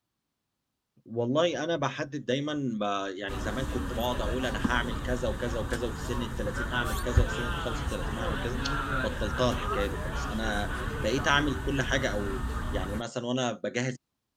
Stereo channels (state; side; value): identical; both; correlation 1.00